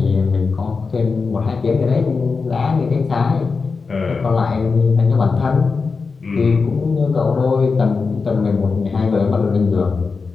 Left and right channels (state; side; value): quieter; right; 4.7 dB